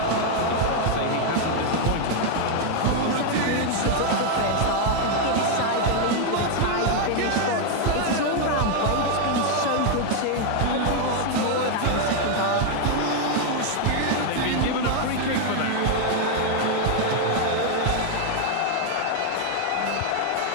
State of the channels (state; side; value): different; both; correlation 0.00